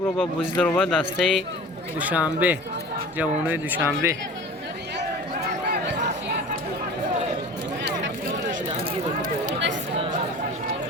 رو با بازی در با دسته دوشنبه، جوانای دوشنبه.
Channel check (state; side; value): normal; both; correlation 0.40